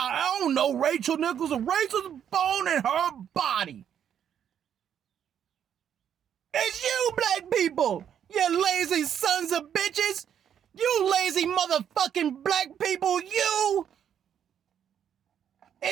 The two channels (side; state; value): left; quieter; 9.0 dB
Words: don't know Rachel Nichols. Rachel's bone in her body. It's you, black people. You lazy sons of bitches. You lazy motherfucking black people. You.